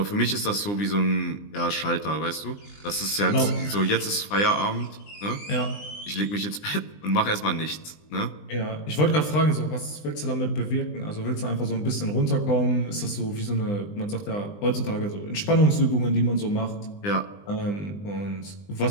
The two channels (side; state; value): right; late; 20 ms